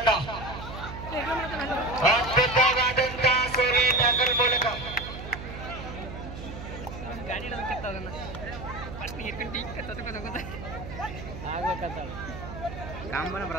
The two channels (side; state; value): right; noise; hum, 10 dB below the sound